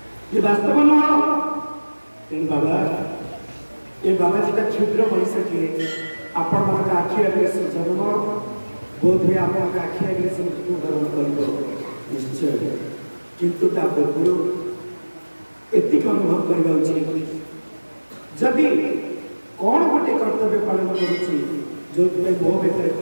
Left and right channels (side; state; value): both; inverted; correlation -1.00